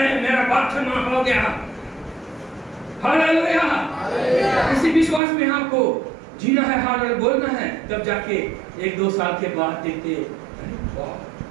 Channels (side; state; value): left; drops out; at 5.2 s